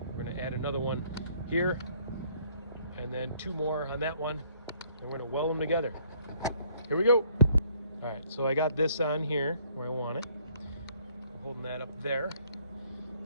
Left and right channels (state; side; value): inverted; both; correlation -0.63